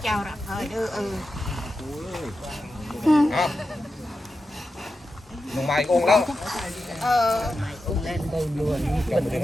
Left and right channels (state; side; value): normal; both; correlation 0.90